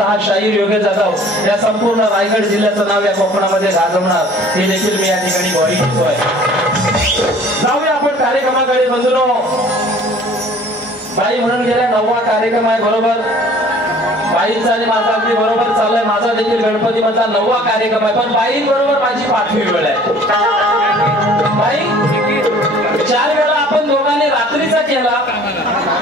शाहीर योगे जाधव या संपूर्ण रायगड जिल्ह्याचं नाव या कोकणामध्ये गाजवणार हे देखील मी या ठिकाणी ग्वाही घेतोय. जाऊया आपण कार्यक्रमाकडे. बंधूंनो, बाई म्हणून गेल्या 9वा कार्यक्रम आहे. बरोबर बाईंचा आणि माझा अगदी बरोबर चाललाय. माझा देखील गणपती माझा 9वा कार्यक्रम आहे. पण बाईंबरोबर माझी 5वी वेळ आहे. बाई 4 वेळा आपण दोघांनी रात्रीचा केला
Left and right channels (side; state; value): both; normal; correlation 0.51